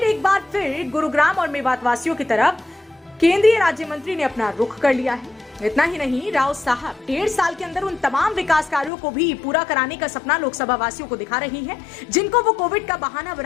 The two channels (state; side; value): drops out; right; at 8.9 s